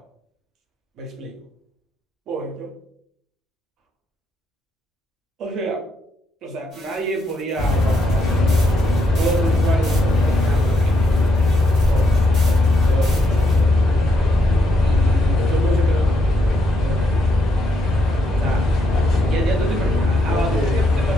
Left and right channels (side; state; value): both; normal; correlation 0.78